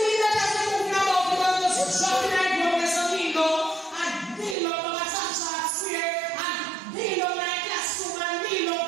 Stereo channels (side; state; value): left; drops out; at 4.5 s